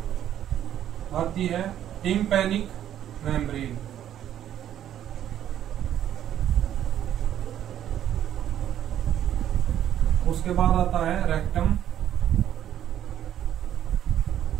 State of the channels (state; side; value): quieter; left; 11.0 dB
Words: आती है टिम्पैनिक मेम्ब्रेन, उसके बाद आता है रेक्टम,